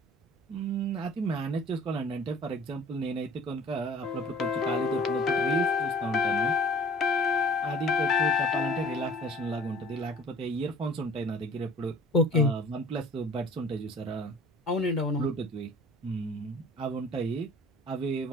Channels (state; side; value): normal; both; correlation 0.48